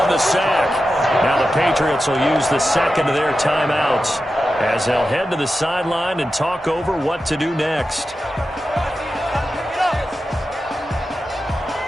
the sack. Now the Patriots will use the second of their timeouts as they'll head to the sideline and talk over what to do next.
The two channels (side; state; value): both; normal; correlation 0.91